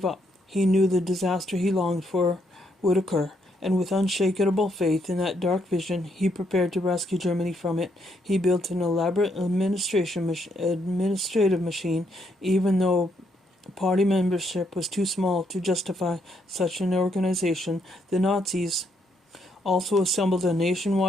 up. He knew the disaster he longed for would occur, and with unshakable faith in that dark vision, he prepared to rescue Germany from it. He built an elaborate administrative machine, even though party membership was too small to justify such an organization. The Nazis also assembled a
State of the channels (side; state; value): both; normal; correlation 0.74